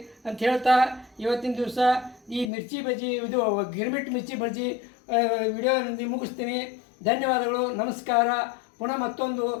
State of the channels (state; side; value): drops out; right; at 2.5 s